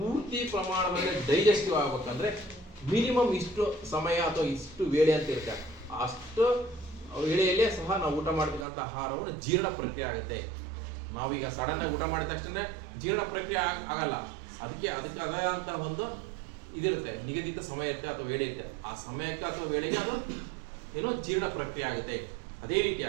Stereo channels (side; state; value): left; drops out; at 8.7 s